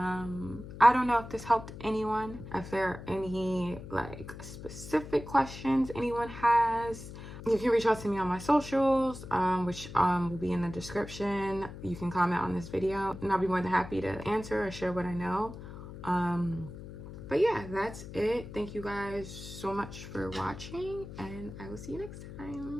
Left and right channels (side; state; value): left; noise; hum, 12 dB below the sound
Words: don't know if this helped anyone. If there are any like specific questions anyone has, you can reach out to me on my socials, which will be in the description. You can comment on this video and I'll be more than happy to answer or share what I know. But yeah, that's it. Thank you guys so much for watching, and I will see you next